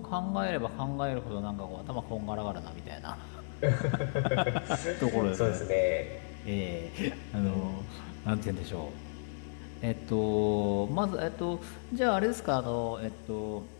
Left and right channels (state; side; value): silent; right; digital silence